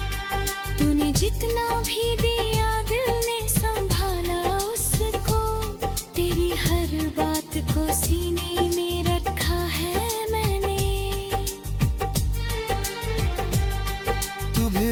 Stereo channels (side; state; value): both; identical; correlation 1.00